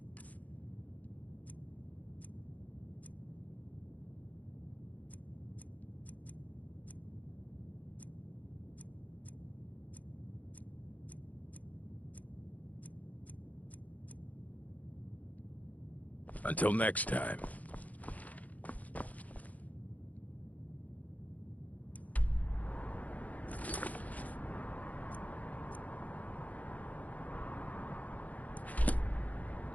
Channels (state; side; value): late; right; 0.075 ms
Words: Until next time.